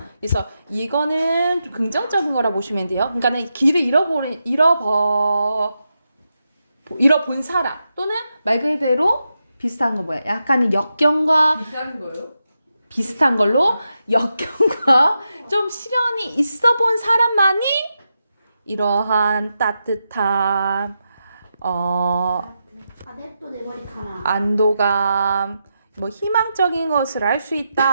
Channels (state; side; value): inverted; both; correlation -0.87